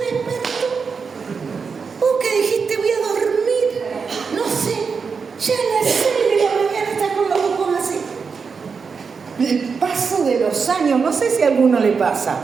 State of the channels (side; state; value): left; quieter; 5.5 dB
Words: despertó. Vos que dijiste: voy a dormir, no sé, ya a las 6 de la mañana estás con los ojos así. El paso de los años, no sé si a alguno le pasa,